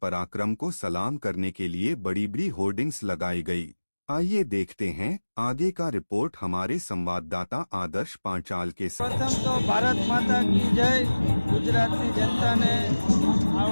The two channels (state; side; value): inverted; both; correlation -1.00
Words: को सलाम करने के लिए बड़ी बड़ी होर्डिंग्स लगाई गई। आइए देखते हैं आगे का रिपोर्ट हमारे संवाददाता आदर्श पांचाल के साथ। प्रथम तो भारत माता की जय। गुजरातनी जनता ने